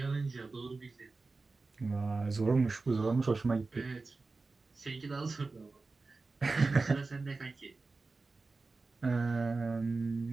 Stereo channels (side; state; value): left; quieter; 3.8 dB